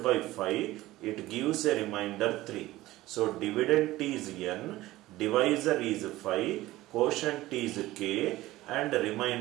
by 5, it gives a remainder 3. So dividend is n, divisor is 5, quotient is k, and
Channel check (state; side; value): quieter; left; 17.1 dB